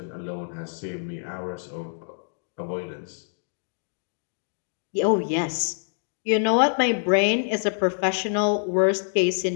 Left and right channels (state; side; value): silent; right; digital silence